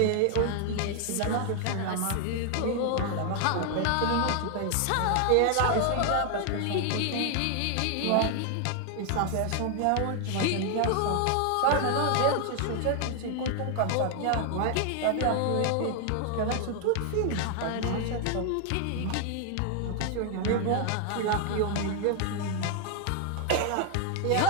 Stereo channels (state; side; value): different; both; correlation 0.00